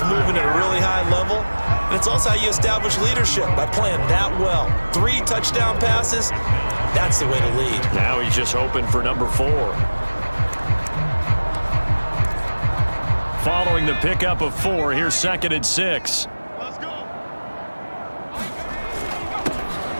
moving at a really high level. And it's also how you establish leadership, by playing that well. 3 touchdown passes. That's the way to lead. Now he's just hoping for number 4. Following the pickup of 4, here's 2nd and 6. Let's go.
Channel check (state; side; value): inverted; both; correlation -1.00